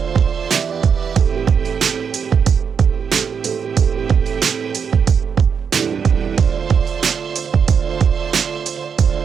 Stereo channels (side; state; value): left; quieter; 6.6 dB